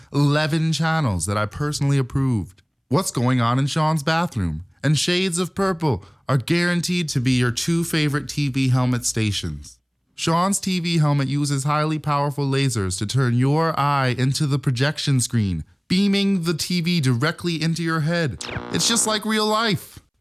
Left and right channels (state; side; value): identical; both; correlation 1.00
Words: 11 channels that I personally approved. What's going on in Sean's bathroom and shades of purple are guaranteed to be your 2 favorite TV helmet stations. Sean's TV helmet uses highly powerful lasers to turn your eye into the projection screen, beaming the TV directly into your head. It's just like real life.